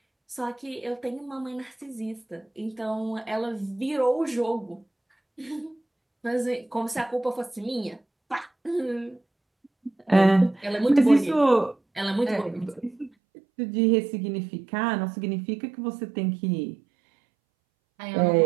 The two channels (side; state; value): left; drops out; at 13.1 s